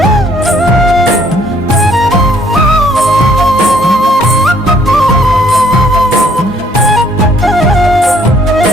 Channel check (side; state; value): both; normal; correlation 0.63